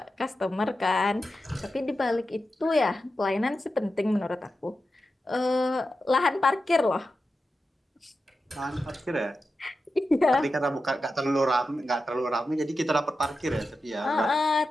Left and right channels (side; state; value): both; normal; correlation 0.91